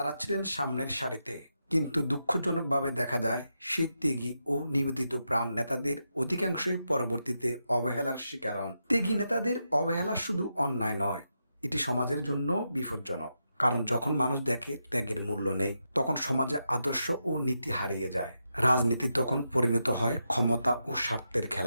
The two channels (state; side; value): inverted; both; correlation -0.86